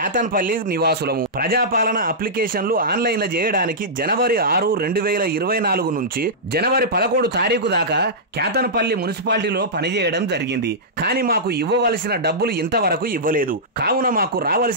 నివాసులము. ప్రజాపాలన అప్లికేషన్లు ఆన్లైన్లో చేయడానికి జనవరి 6, 2024 నుంచి జనవరి 11 తారీఖు దాకా క్యాతన్పల్లి మున్సిపాలిటీలో పనిచేయడం జరిగింది. కానీ మాకు ఇవ్వవలసిన డబ్బులు ఇంతవరకు ఇవ్వలేదు. కావున మాకు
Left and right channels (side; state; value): both; normal; correlation -0.14